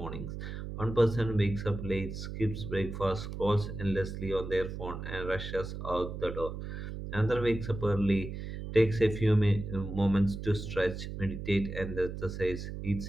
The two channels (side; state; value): right; noise; hum, 7 dB below the sound